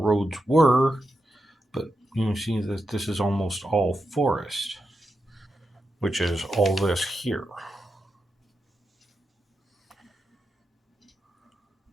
were, but you can see that this is almost all forest, which is all this here.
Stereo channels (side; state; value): both; normal; correlation 0.87